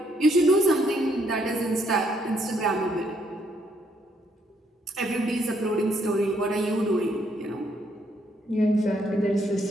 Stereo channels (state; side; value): normal; both; correlation 0.71